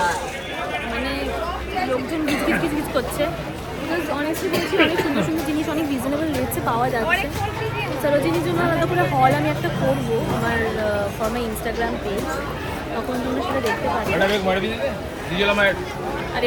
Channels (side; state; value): both; identical; correlation 1.00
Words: মানে লোকজন গিজগিজ করছে। বিকজ অনেস্টলি বলছি অনেক সুন্দর সুন্দর জিনিস অনেক রিজনেবল রেটসে পাওয়া যাচ্ছে। সরোজিনীর জন্য আলাদা করে হল আমি একটা করবো আমার ফর মাই ইনস্টাগ্রাম পেজ, তখন তোমরা সেটা দেখতে পারবে। আর